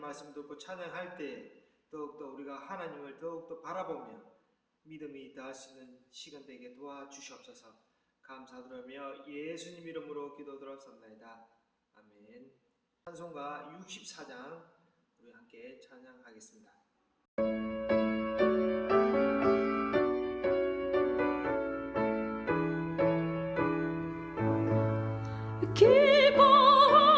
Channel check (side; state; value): both; identical; correlation 1.00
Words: 듣고 찬양할 때 더욱더 우리가 하나님을 더욱더 바라보며 믿음이 더할 수 있는 시간 되게 도와주시옵소서. 감사드리며 예수님 이름으로 기도드렸습니다. 아멘. 찬송가 64장 우리 함께 찬양하겠습니다.